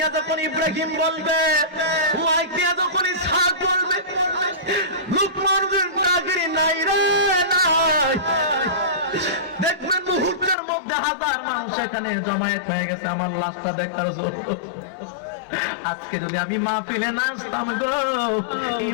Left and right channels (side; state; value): right; drops out; at 10.6 s